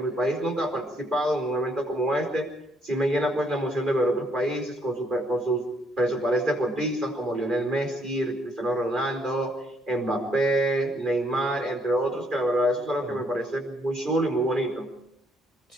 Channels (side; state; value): both; normal; correlation 0.70